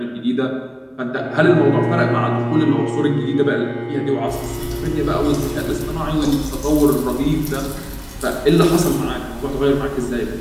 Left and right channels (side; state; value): both; identical; correlation 1.00